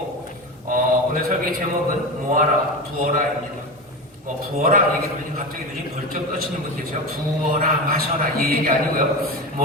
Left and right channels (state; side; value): normal; both; correlation 0.24